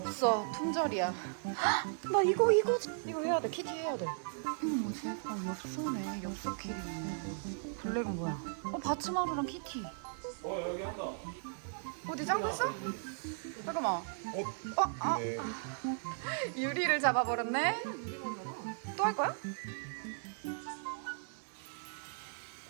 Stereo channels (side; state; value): left; silent; digital silence